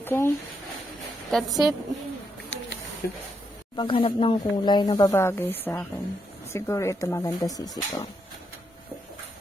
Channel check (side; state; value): both; normal; correlation 0.80